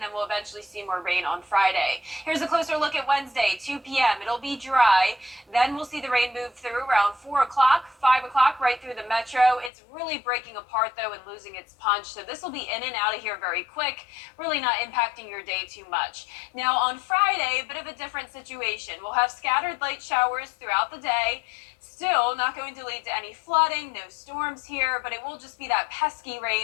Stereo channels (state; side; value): drops out; right; at 9.7 s